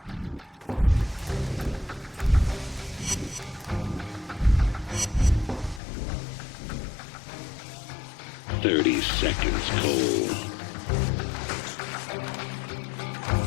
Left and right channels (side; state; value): right; drops out; at 5.8 s